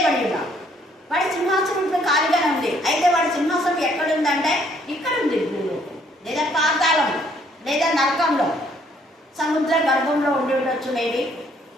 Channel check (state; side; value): normal; both; correlation 0.65